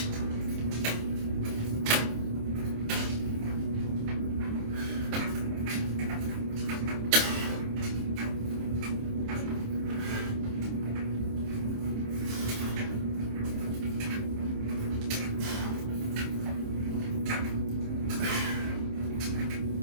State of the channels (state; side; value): late; left; 27 ms